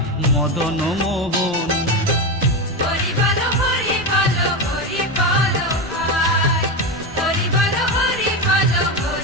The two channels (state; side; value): normal; both; correlation 0.15